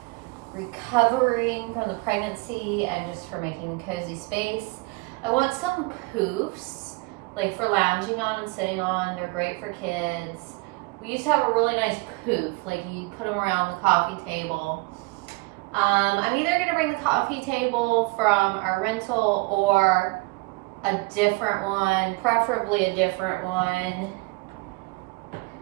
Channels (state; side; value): quieter; left; 25.8 dB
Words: recovering from the pregnancy and just for making a cozy space. I want some poofs, like for lounging on and sitting on. They're great for kids. We used to have a really nice poof, like you put them around the coffee table. I'm either gonna bring the coffee table from our rental or a different one, preferably a different one.